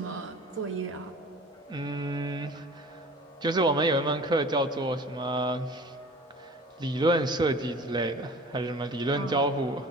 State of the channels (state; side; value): normal; both; correlation 0.44